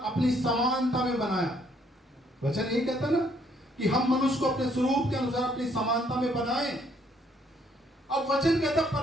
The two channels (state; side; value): normal; both; correlation 0.67